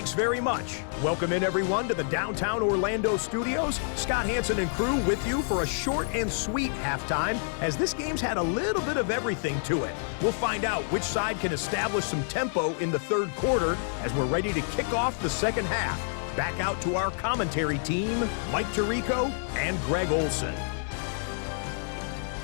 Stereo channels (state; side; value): silent; right; digital silence